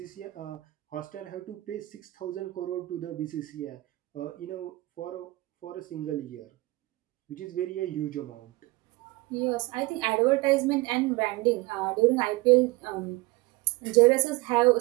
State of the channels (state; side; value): quieter; left; 21.2 dB